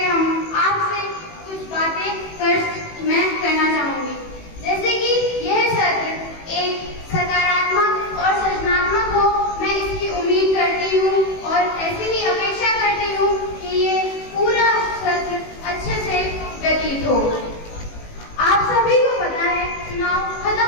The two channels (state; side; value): late; right; 18 ms